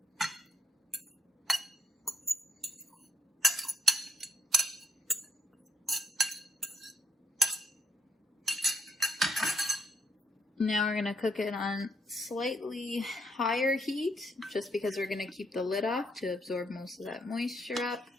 Now we're going to cook it on slightly higher heat, just because we're going to keep the lid off to absorb most of that moisture up.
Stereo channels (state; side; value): normal; both; correlation 0.74